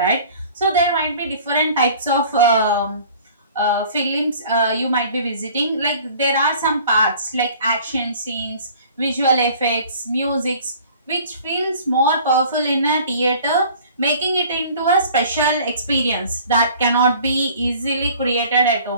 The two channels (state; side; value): inverted; both; correlation -0.49